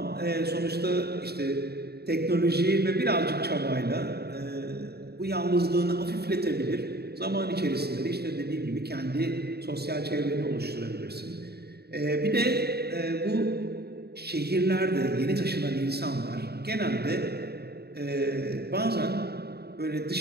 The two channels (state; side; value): late; left; 0.47 ms